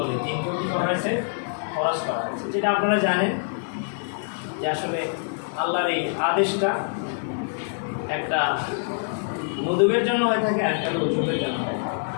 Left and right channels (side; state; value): right; silent; 62 dB below the other